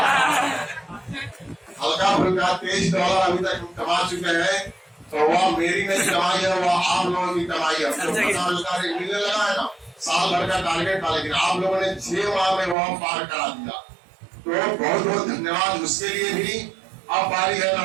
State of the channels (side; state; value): left; drops out; at 12.8 s